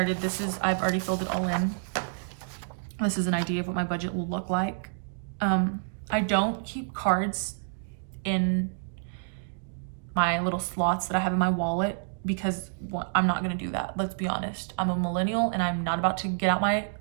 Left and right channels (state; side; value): silent; left; digital silence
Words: I've already filled it all in. This is an idea of what my budget will look like. I don't keep cards in my little slots that I have in my wallet because I'm not gonna do that. Let's be honest. I'm a millennial and I'm not about to get out my